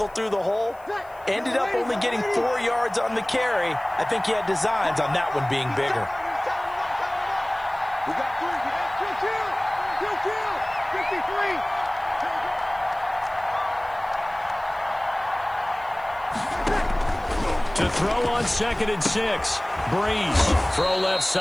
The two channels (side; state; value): left; noise; hiss, 29 dB below the sound